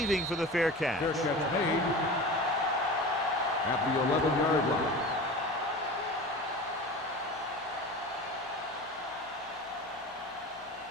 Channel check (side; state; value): both; normal; correlation 0.33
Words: for the fair catch. Fair catch made at the 11-yard line.